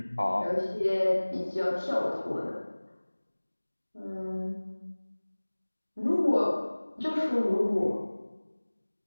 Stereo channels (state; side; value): inverted; both; correlation -1.00